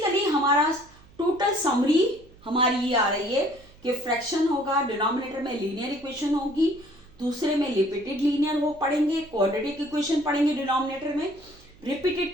हमारा टोटल समरी हमारी ये आ रही है कि फ्रैक्शन होगा, डिनोमिनेटर में लीनियर इक्वेशन होगी, दूसरे में रिपीटेड लीनियर वो पढ़ेंगे, क्वाड्रेटिक इक्वेशन पढ़ेंगे डिनोमिनेटर में, रिपीटेड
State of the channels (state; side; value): noise; right; hum, 26 dB below the sound